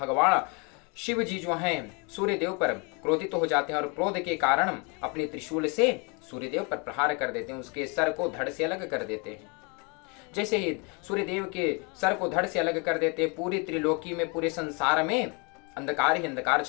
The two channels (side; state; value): right; quieter; 32.2 dB